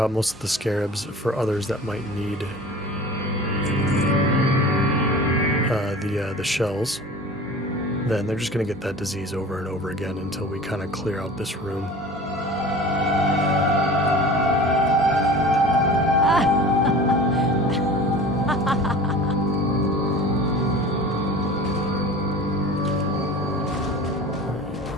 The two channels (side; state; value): both; normal; correlation 0.39